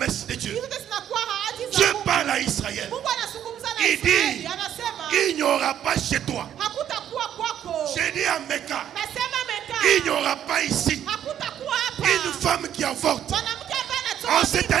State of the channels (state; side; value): quieter; left; 10.2 dB